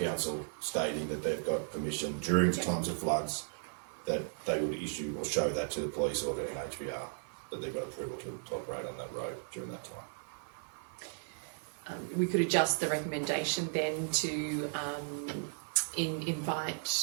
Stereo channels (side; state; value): left; silent; digital silence